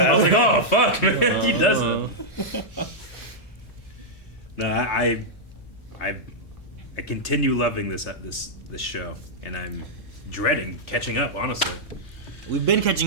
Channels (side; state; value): both; normal; correlation -0.07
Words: was like, oh fuck, man, he doesn't. Uh, No, I continue loving this show, and I'm dreading catching up. Honestly, We've been